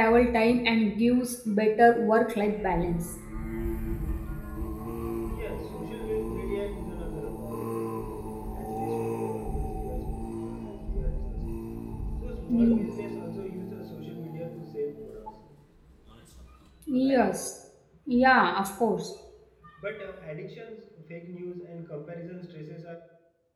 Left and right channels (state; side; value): identical; both; correlation 1.00